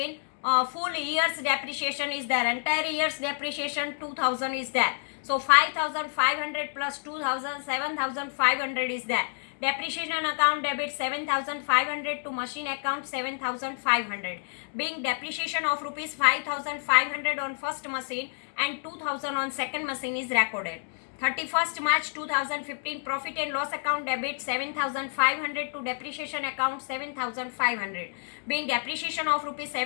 full year's depreciation is there. Entire year's depreciation 2000 is there. So 5500 plus 2000, 7500 is there. Depreciation account debit 7500 to machine account 7500. Being depreciation of rupees 5500 on first machine and 2000 on second machine is recorded. 31st March 2015 profit and loss account debit 7500 to depreciation account 7500. Being depreciation of rupees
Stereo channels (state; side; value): silent; right; 59 dB below the other